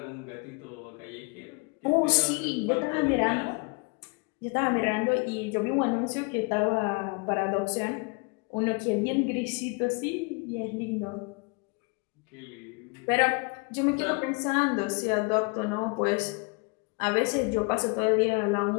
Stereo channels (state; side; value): quieter; right; 30.7 dB